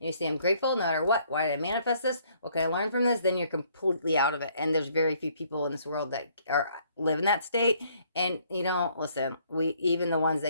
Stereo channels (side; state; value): both; inverted; correlation -0.64